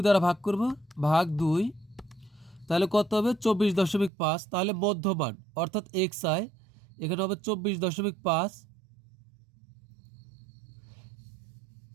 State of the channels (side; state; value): left; drops out; at 4.1 s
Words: দ্বারা ভাগ করব, ভাগ 2, তাহলে কত হবে 24.5। তাহলে মধ্যমান অর্থাৎ xi এখানে হবে 24.5।